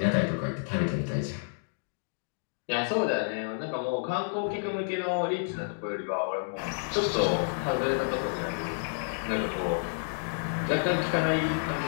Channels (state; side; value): silent; right; digital silence